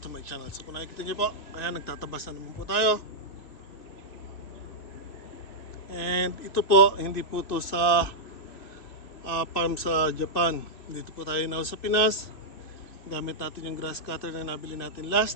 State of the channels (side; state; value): right; late; 2.5 ms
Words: to my channel. So kung nakikita niyo po, ayan, nagtatabas na naman po tayo. And ito po, hindi po to sa farm sa Japan. Dito po tayo now sa Pinas. Gamit natin yung grass cutter na nabili natin